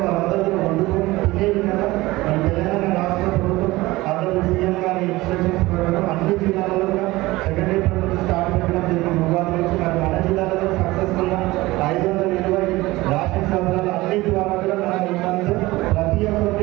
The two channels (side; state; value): left; quieter; 19.6 dB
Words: వాళ్ళందరూ కూడా వండుకొని తినే విధంగా మన తెలంగాణ రాష్ట్ర ప్రభుత్వం అందరూ సీఎం గారి ఇన్స్ట్రక్షన్స్ ప్రకారం అన్ని జిల్లాలలో కూడా సెకండరీ ప్రభుత్వం స్టార్ట్ పెట్టడం జరిగింది. ఉగాది నుంచి మరి మన జిల్లాలో సక్సెస్ఫుల్గా 520 రాష్ట్ర సంస్థలు అన్నింటి ద్వారా కూడా మనం ఇవ్వాలి. ప్రతి